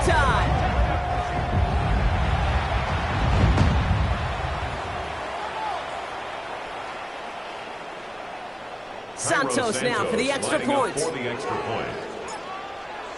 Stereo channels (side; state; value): both; identical; correlation 1.00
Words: Santos now for the extra point.